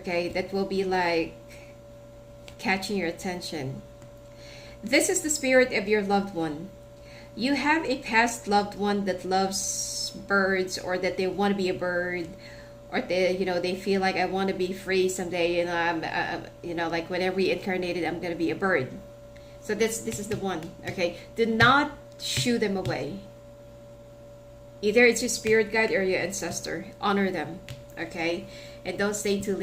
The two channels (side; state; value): both; identical; correlation 1.00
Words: that will be like catching your attention. This is the spirit of your loved one. You have a past loved one that loves birds, or that they want to be a bird, or they feel like, I want to be free someday, I'm like when I reincarnated, I'm going to be a bird. So this is the one, okay? Do not shoo them away. Either it's your spirit guide or your ancestor. Honor them, okay? And don't stay too